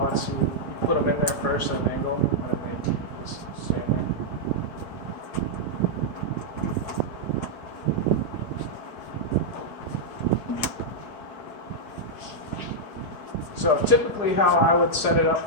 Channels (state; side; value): late; right; 4.8 ms